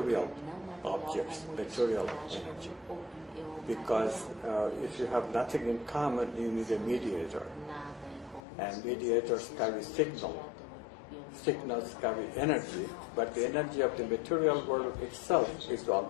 objects, material energy? Because if you have nothing in common, you need a mediator. And mediators carry signal. Signals carry energy, but the energy of the material world itself is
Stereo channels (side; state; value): right; drops out; at 8.4 s